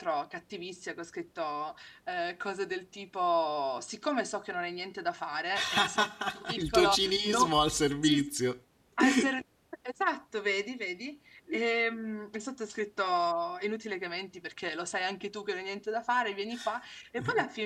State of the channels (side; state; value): both; identical; correlation 1.00